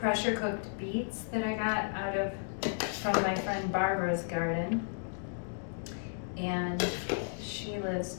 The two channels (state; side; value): silent; right; digital silence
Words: cooked beets that I got from my friend Barbara's garden. And she lives